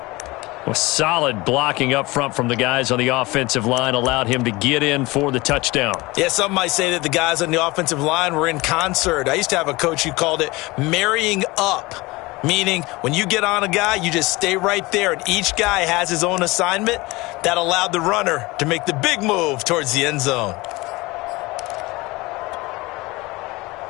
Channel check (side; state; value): right; quieter; 22.2 dB